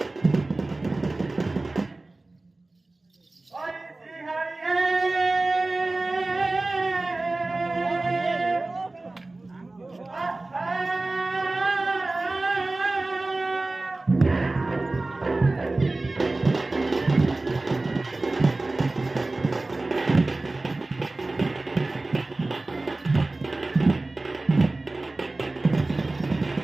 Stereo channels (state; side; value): quieter; left; 3.1 dB